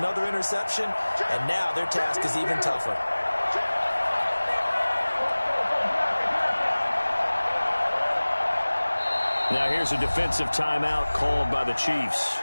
interception, and now their task is even tougher. Now here's a defensive timeout called by the Chiefs.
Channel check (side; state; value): both; inverted; correlation -1.00